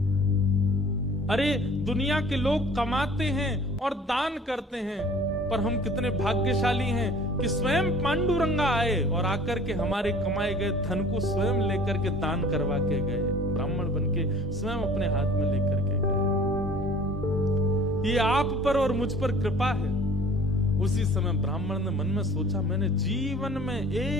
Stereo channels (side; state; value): both; normal; correlation 0.49